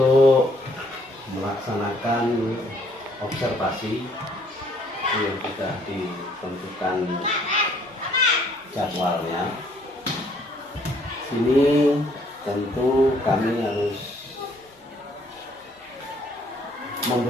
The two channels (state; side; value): normal; both; correlation 0.64